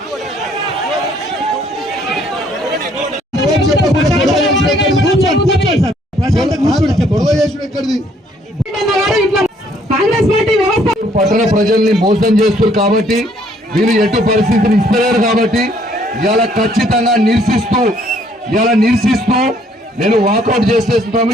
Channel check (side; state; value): both; normal; correlation 0.64